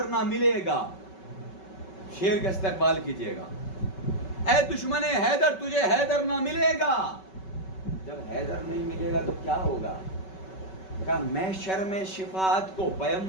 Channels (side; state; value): right; late; 5.3 ms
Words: نہ ملے گا، شیر کا استقبال کیجئے گا، اے دشمن حیدر تجھے حیدر نہ ملے گا۔ جب حیدر نہیں ملے گا تو کیا ہوگا؟ کہا محشر میں شفاعت کو